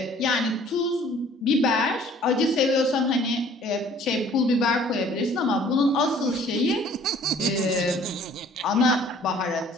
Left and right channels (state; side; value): normal; both; correlation 0.54